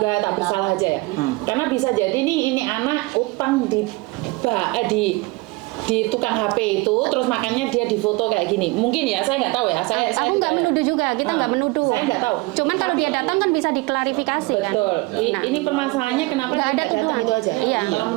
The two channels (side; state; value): left; quieter; 23.8 dB